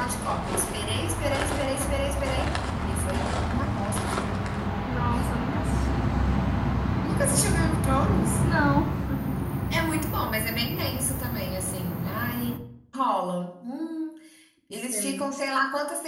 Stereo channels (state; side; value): identical; both; correlation 1.00